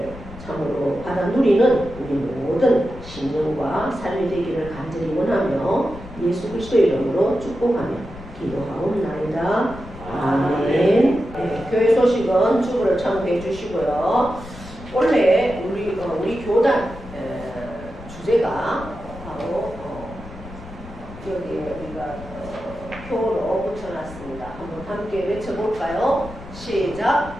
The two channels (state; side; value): noise; left; rumble, 15 dB below the sound